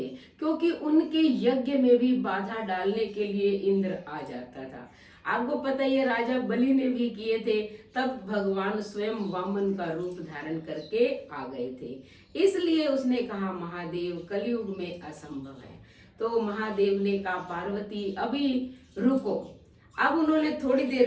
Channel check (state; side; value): identical; both; correlation 1.00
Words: क्योंकि उनके यज्ञ में भी बाधा डालने के लिए इंद्र आ जाता था। आपको पता ही है राजा बलि ने भी किए थे, तब भगवान स्वयं वामन का रूप धारण करके आ गए थे। इसलिए उसने कहा महादेव, कलयुग में असंभव है। तो महादेव ने कहा पार्वती अभी रुको। अब उन्होंने थोड़ी देर